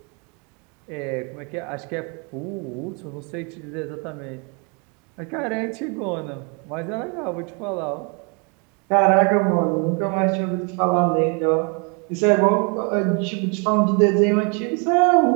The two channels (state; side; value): quieter; left; 34.4 dB